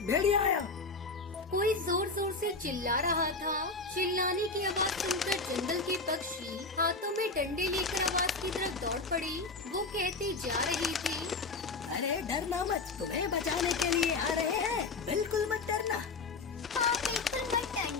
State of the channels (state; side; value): quieter; right; 3.8 dB